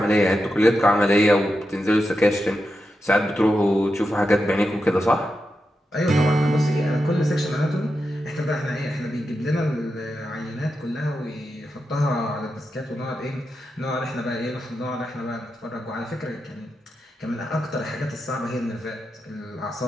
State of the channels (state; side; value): normal; both; correlation 0.88